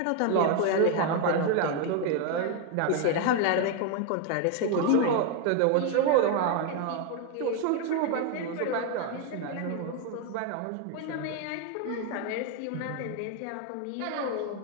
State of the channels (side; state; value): both; different; correlation 0.01